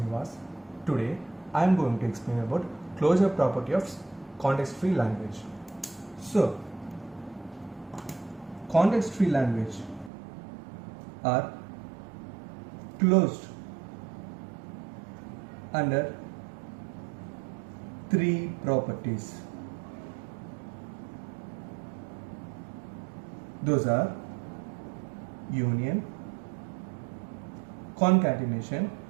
Today I am going to explain about closure property of context-free language. So, context-free language are closed under three properties. Those are union, concatenation,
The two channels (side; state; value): left; drops out; at 10.1 s